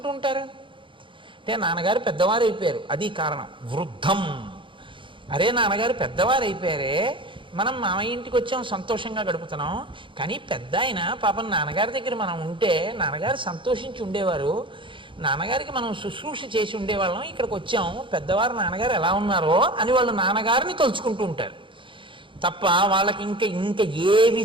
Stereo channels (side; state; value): left; late; 0.24 ms